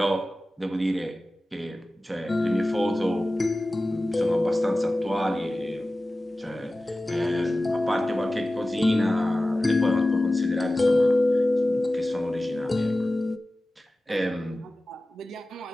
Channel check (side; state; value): both; normal; correlation 0.96